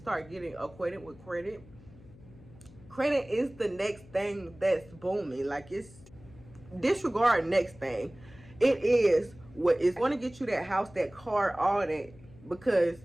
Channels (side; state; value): left; noise; hum, 22 dB below the sound